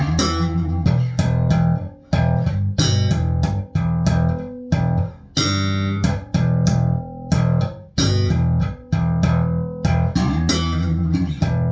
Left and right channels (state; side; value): identical; both; correlation 1.00